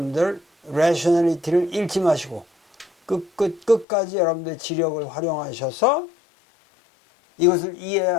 rationality를 잃지 마시고 끝까지 여러분들 지력을 활용하셔서 이것을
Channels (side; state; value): right; drops out; at 3.9 s